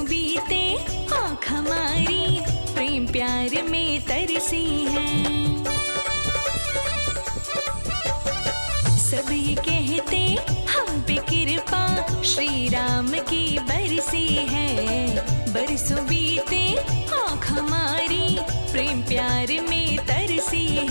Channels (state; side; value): inverted; both; correlation -1.00